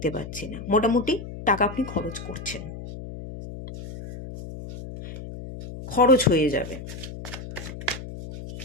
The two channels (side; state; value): left; noise; hum, 11 dB below the sound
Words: পাচ্ছি না। মোটামুটি টাকা আপনি খরচ করছেন, খরচ হয়ে যাবে।